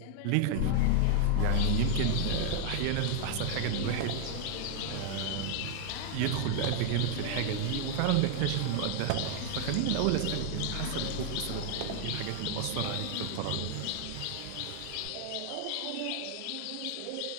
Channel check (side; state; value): both; different; correlation 0.00